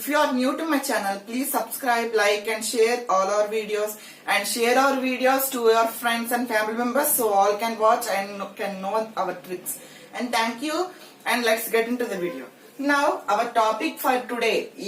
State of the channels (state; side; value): identical; both; correlation 1.00